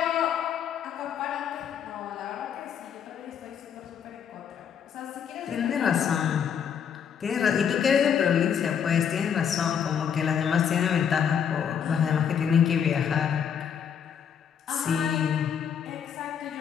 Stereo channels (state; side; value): quieter; right; 7.9 dB